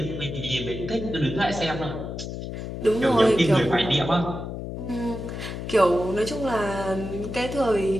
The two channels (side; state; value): left; noise; hum, 7 dB below the sound